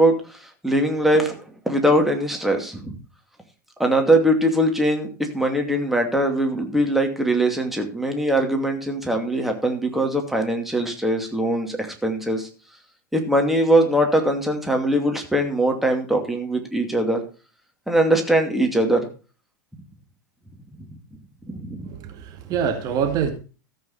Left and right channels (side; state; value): both; normal; correlation 0.58